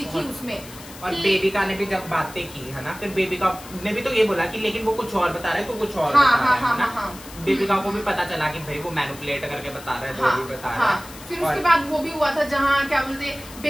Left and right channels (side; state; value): left; noise; hiss, 17 dB below the sound